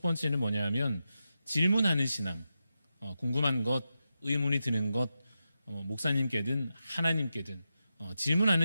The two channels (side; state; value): both; inverted; correlation -0.89